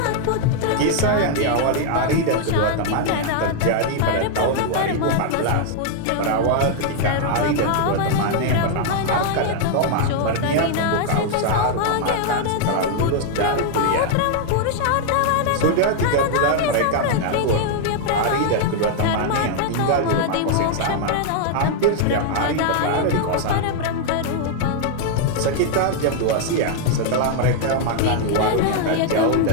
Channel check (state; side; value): different; both; correlation 0.00